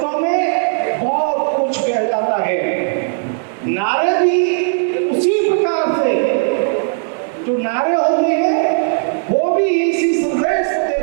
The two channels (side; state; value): left; silent; digital silence